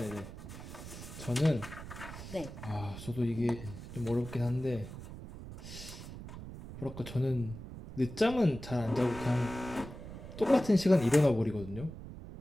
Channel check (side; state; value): right; noise; rumble, 12 dB below the sound